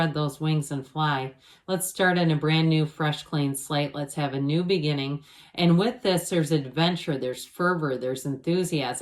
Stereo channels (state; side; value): identical; both; correlation 1.00